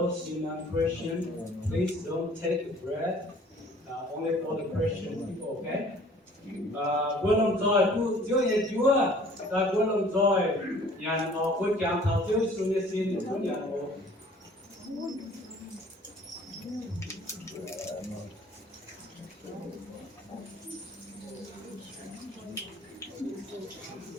in Christian, please don't take the bread. Only for the Christian people, okay? Buat lòng joy, tu chiếu nhà Chúa, ta buat lòng joy, nhà họ buat cảm thảo chiếu xuống nhà xin Chúa nhà họ.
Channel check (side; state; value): both; normal; correlation 0.52